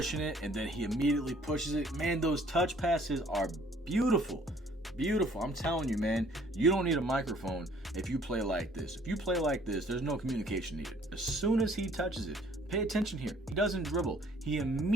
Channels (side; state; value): both; normal; correlation 0.58